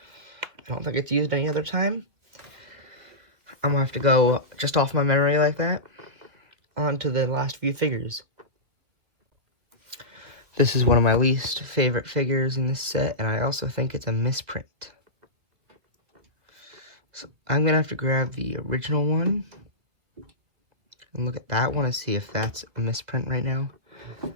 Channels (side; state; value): left; late; 2.3 ms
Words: I don't think it's used any other time. I'm gonna have to go just off my memory like that. On to the last few figures. This is one of my least favorite figures in this set, and I also think it's a misprint. So I'm gonna have to grab the original one and look at that one and see if that's a misprint right now.